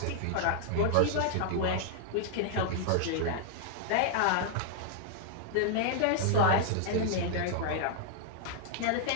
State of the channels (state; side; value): different; both; correlation -0.01